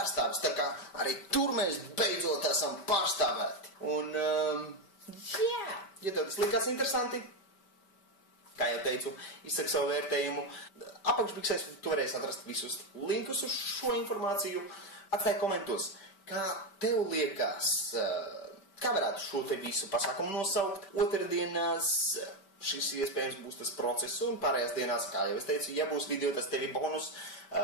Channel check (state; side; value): late; right; 5.1 ms